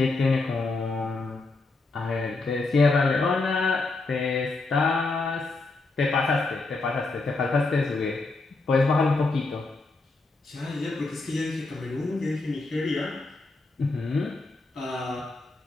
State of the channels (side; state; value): right; quieter; 3.5 dB